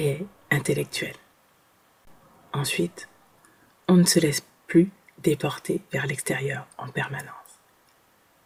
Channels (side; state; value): both; identical; correlation 1.00